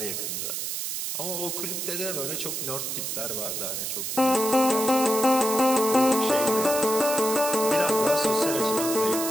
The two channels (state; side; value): noise; right; hiss, 3 dB below the sound